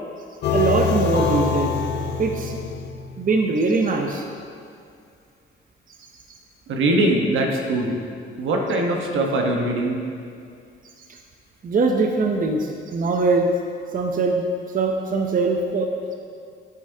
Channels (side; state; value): both; normal; correlation 0.42